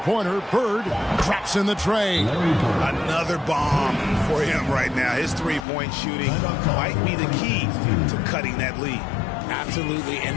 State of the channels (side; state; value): right; drops out; at 5.7 s